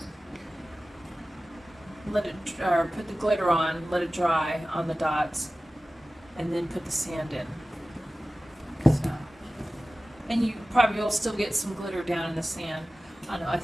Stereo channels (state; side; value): normal; both; correlation 0.96